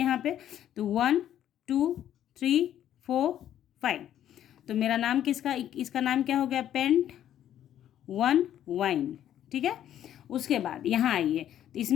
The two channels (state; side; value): quieter; right; 11.1 dB